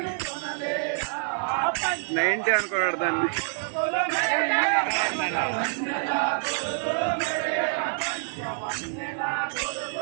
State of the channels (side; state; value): left; silent; digital silence